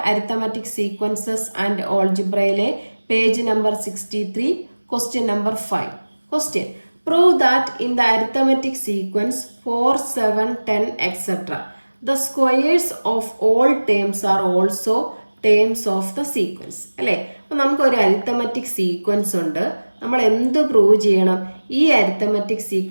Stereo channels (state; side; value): inverted; both; correlation -1.00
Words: അരിത്തമാറ്റിക് സീക്വൻസസ് ആൻഡ് ഓൾജിബ്രയിലെ page number 63, question number 5. Question: prove that in the arithmetic sequence 4, 7, 10, etc. the squares of all terms are also terms of the sequence. അല്ലേ? അപ്പോൾ നമുക്കൊരു അരിത്തമാറ്റിക് സീക്വൻസ് ഉണ്ട്. നമ്മൾ എന്ത് prove ചെയ്യണം? ഈ അരിത്തമാറ്റിക്